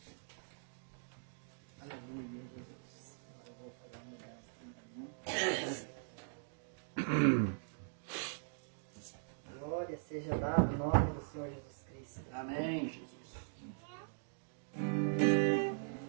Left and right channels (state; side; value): silent; left; digital silence